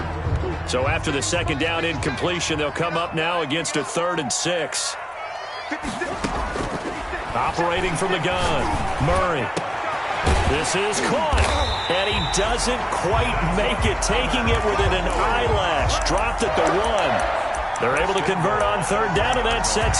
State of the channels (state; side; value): identical; both; correlation 1.00